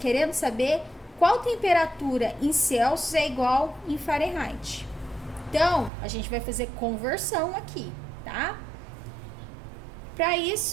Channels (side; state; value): left; drops out; at 5.9 s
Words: saber qual temperatura em Celsius é igual em Fahrenheit. Então, a gente vai fazer conversão aqui, tá? Para